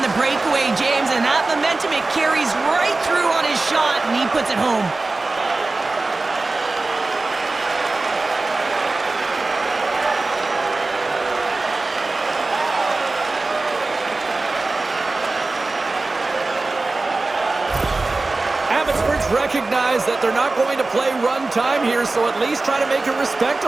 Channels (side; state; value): left; quieter; 3.4 dB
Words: the breakaway, James. And that momentum, it carries right through on his shot, and he puts it home. Abbotsford's recognize that they're not going to play run time here, so at least try to make it